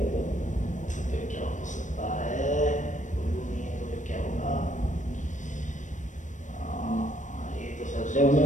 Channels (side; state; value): right; late; 0.36 ms